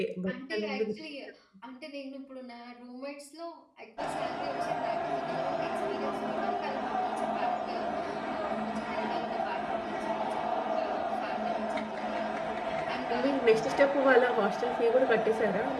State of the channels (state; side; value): identical; both; correlation 1.00